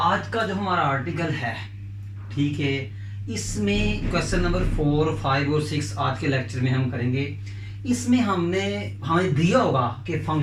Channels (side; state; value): both; identical; correlation 1.00